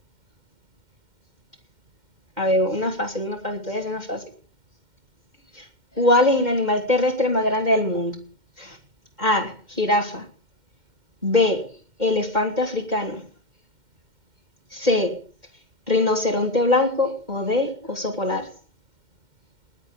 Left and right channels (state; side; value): late; left; 2.1 ms